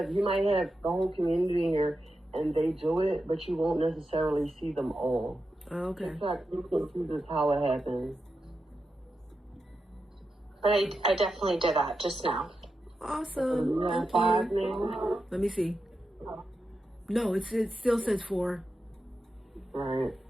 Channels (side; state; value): both; normal; correlation 0.89